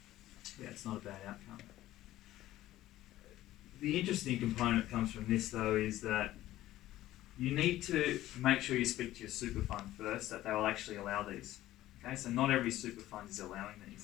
yeah, it's not a bad outcome. The interesting component comes from this though is that you need to make sure you speak to your super fund first that they will actually allow these. Okay, so not every super fund is allowing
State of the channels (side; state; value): right; quieter; 14.9 dB